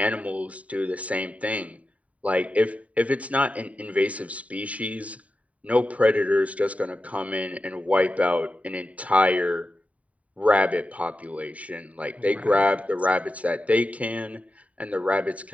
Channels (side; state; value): left; late; 0.068 ms